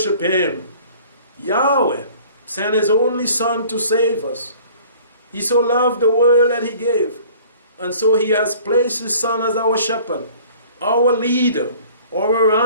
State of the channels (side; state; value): both; inverted; correlation -0.50